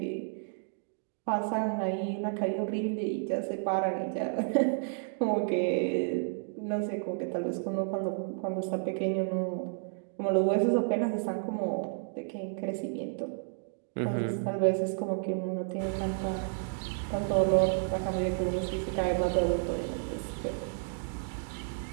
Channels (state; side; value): silent; left; digital silence